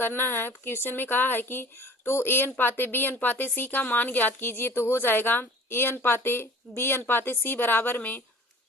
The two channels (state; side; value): normal; both; correlation 0.45